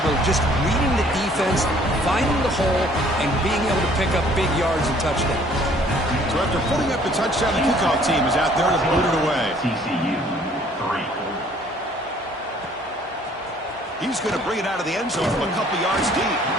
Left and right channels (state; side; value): normal; both; correlation 0.58